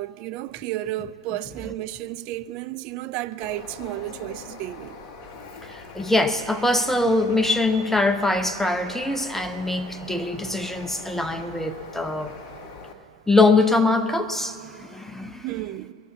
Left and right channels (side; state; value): both; normal; correlation 0.66